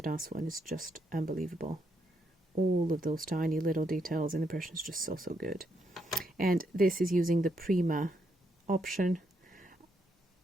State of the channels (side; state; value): both; normal; correlation 0.78